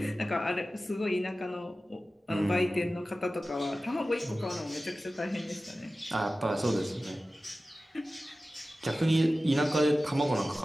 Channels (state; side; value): normal; both; correlation 0.95